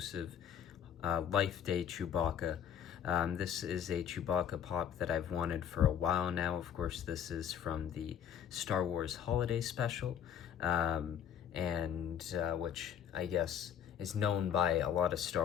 Life Day Chewbacca. This is a Chewbacca pop that I've wanted for a while now. Of course, this is from the Star Wars Holiday Special, which I guess is known by a lot of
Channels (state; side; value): quieter; right; 8.9 dB